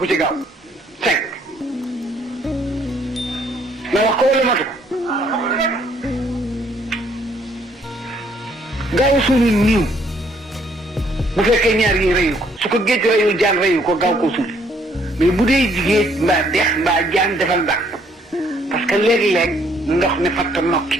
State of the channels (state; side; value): normal; both; correlation 0.66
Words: ci gaaw 5 na wax ko wala matu ko gaaw suuli niiw bu fekkee ñaar yi reyu ko su ko géej reyul jaan reyu ko gaaw ko suuli mais bu dee jigéen mbaa dex mbaa jaan defal ndànk parce que léeg-léeg ndox mi fatt nokki